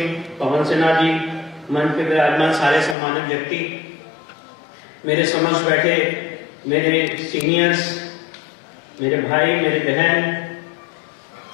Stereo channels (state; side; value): drops out; right; at 3.0 s